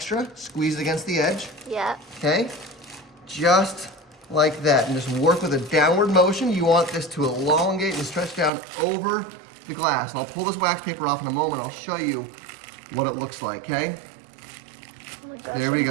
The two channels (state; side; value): drops out; left; at 8.5 s